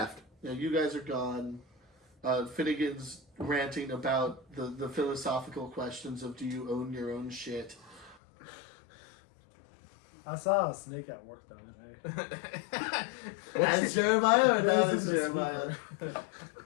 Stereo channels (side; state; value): right; drops out; at 8.2 s